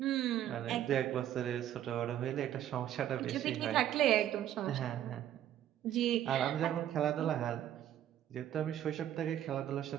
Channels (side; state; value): left; quieter; 11.4 dB